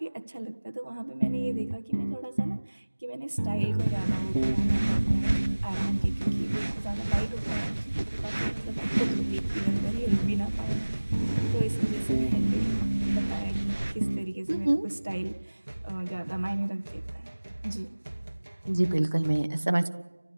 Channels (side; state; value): both; inverted; correlation -1.00